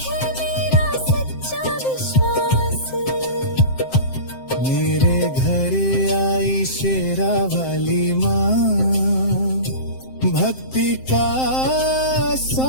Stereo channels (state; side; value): late; right; 7.7 ms